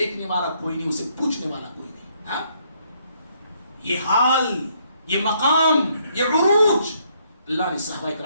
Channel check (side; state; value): both; inverted; correlation -0.70